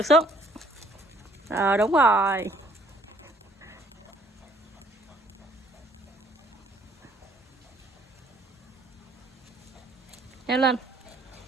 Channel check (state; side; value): normal; both; correlation 0.61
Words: xuống. Đúng rồi. Leo lên,